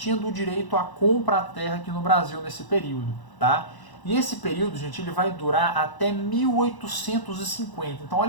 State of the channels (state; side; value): late; right; 1.0 ms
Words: do direito a comprar a terra aqui no Brasil nesse período, tá? E esse período, gente, ele vai durar até 1850. Então,